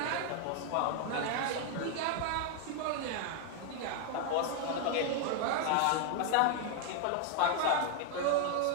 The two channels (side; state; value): both; different; correlation 0.00